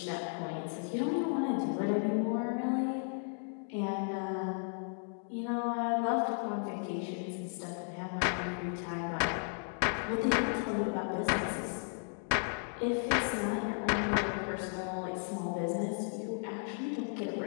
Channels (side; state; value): right; silent; 55 dB below the other